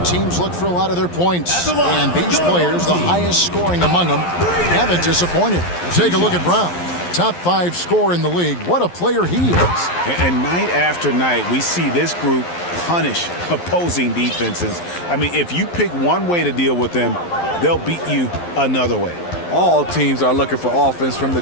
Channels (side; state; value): right; late; 11 ms